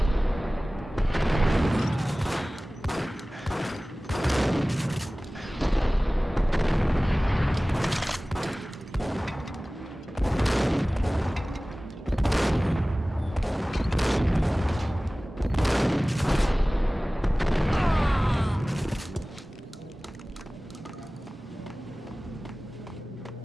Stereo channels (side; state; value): both; normal; correlation 0.98